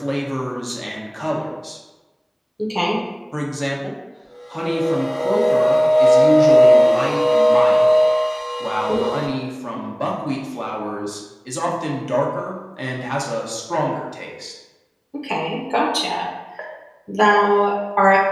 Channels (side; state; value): both; identical; correlation 1.00